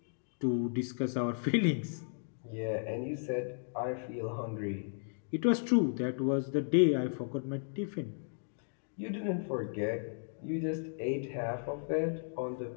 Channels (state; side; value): silent; right; digital silence